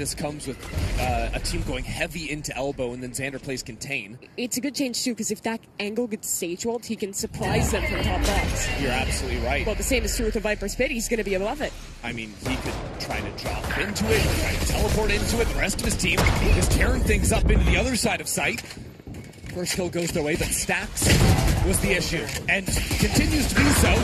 comes with a team going heavy into elbow and then Xander plays contain. It's a good change too, because if that angle gets Sage walled, he can surprise them from top box. You're absolutely right. Well, the same is true with the Viper's Pit. He's going to be above it. I mean, he could try to drop into it, try to teleport into it. The rest of his team is tearing things up into the other side of sight. First kill goes their way, but Stacks was the issue, and continues to be so.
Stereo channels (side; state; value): both; identical; correlation 1.00